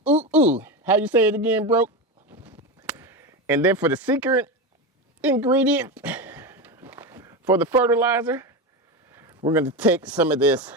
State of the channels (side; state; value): both; normal; correlation 0.18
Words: ooh, ooh. How you say it again, Broke? And then for the secret ingredient for the fertilizer, we're going to take some of this